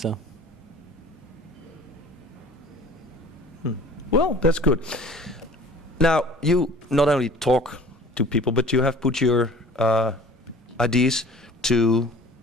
Well, that's good. Now, you not only talk to people, but you have put your ideas to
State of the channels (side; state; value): both; normal; correlation 0.47